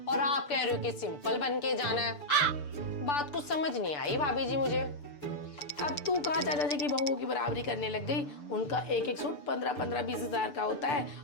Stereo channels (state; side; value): late; right; 6.8 ms